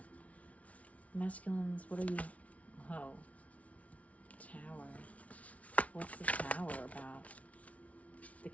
Masculines, what are you? Oh, Tower. What's the Tower about? The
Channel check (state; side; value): late; right; 0.066 ms